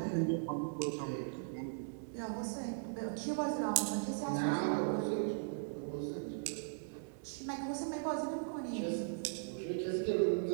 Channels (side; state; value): left; silent; digital silence